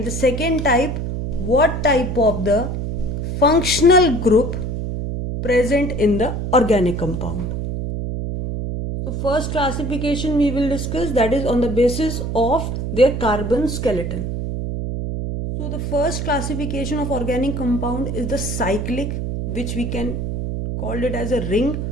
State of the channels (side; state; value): right; noise; hum, 3 dB below the sound